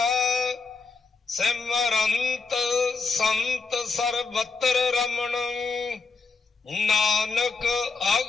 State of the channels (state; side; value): quieter; right; 4.4 dB